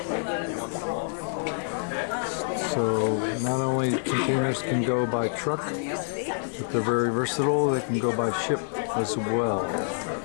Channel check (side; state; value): right; silent; digital silence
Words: So not only containers can go by truck, but they're very versatile. They can go by ship as well.